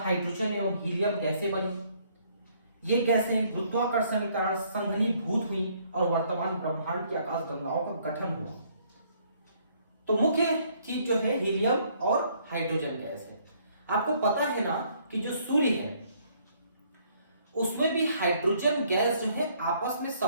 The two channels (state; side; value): inverted; both; correlation -0.65